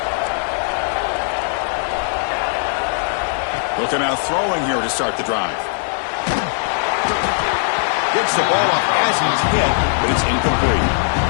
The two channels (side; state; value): right; silent; digital silence